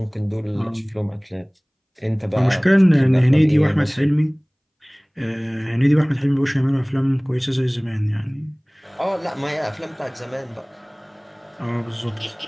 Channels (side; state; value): both; identical; correlation 1.00